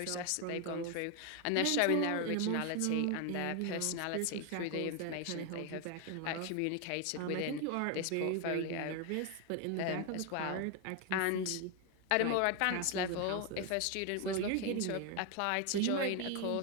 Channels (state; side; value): different; both; correlation 0.01